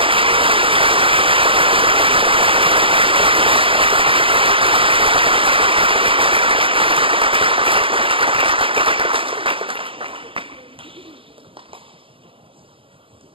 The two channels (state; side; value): late; left; 0.26 ms